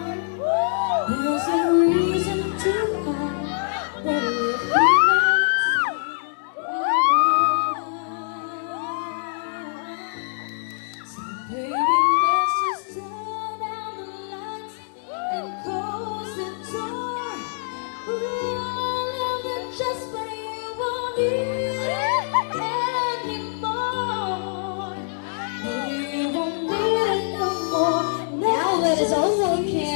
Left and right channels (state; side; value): silent; right; digital silence